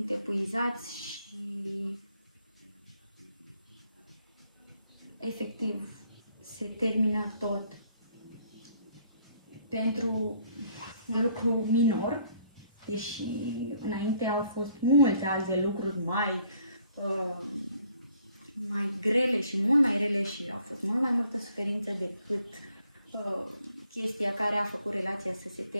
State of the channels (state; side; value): inverted; both; correlation -0.65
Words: epuizați și efectiv se termină tot pentru un lucru minor, deși înainte au fost multe alte lucruri mai grele și mult mai rele și au fost mult mai multă suferință decât chestia care a făcut relația să se